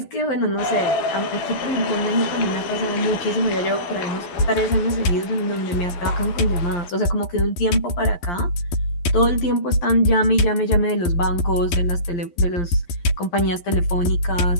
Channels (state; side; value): late; right; 11 ms